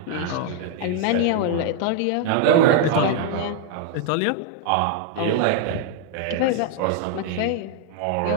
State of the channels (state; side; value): different; both; correlation 0.00